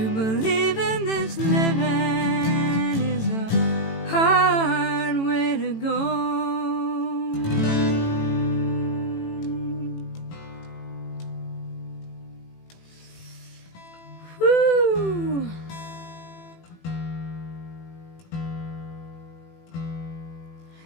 believe in this living is a hard way to go. Whew.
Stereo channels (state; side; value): late; right; 18 ms